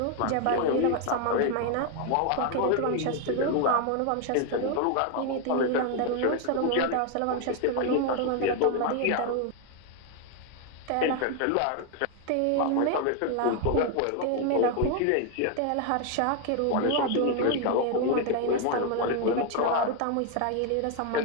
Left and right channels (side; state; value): both; different; correlation 0.01